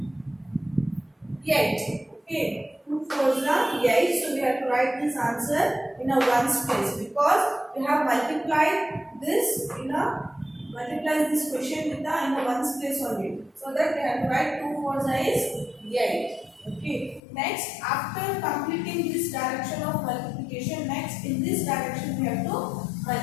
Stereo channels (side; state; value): right; drops out; at 17.2 s